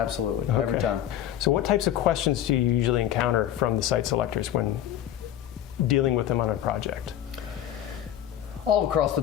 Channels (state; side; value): quieter; right; 11.4 dB